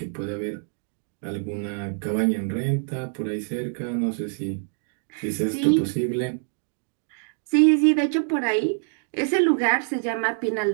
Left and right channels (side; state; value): left; silent; digital silence